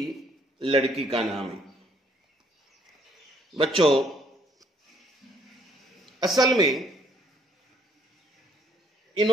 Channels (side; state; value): both; normal; correlation 0.66